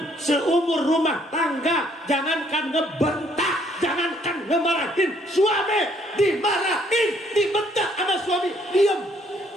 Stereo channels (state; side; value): normal; both; correlation 0.66